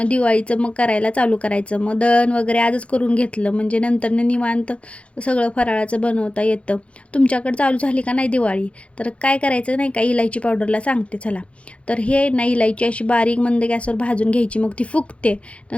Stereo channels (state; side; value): late; right; 0.062 ms